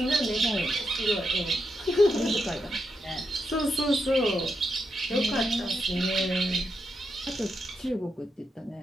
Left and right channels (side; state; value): both; normal; correlation 0.84